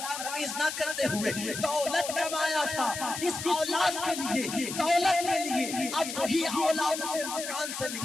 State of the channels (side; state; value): left; noise; hiss, 7 dB below the sound